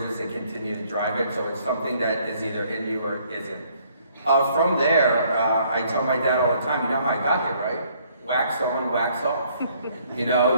and continue to drive it. So it's something that is either in you or isn't. From there, I tell my dad all the time, you know how I got here, right? Wax on, wax off.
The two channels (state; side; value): inverted; both; correlation -0.64